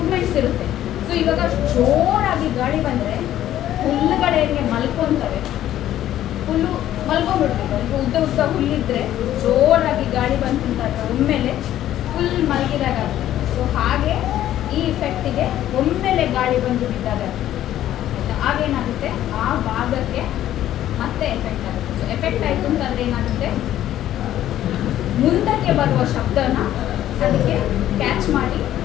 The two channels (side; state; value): right; quieter; 12.5 dB